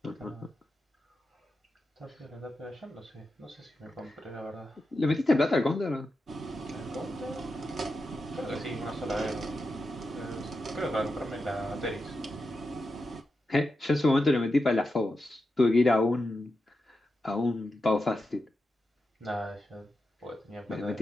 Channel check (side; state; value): both; normal; correlation 0.89